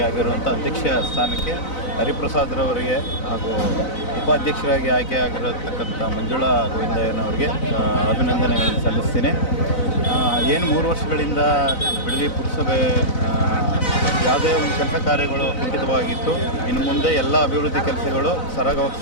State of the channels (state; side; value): late; right; 4.0 ms